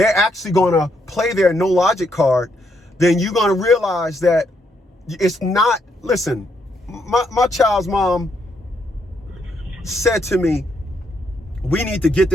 actually going to play their no logic card, then you're going to realize that it's not. Listen, my child's mom said to me, we need to get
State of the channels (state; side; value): normal; both; correlation 0.76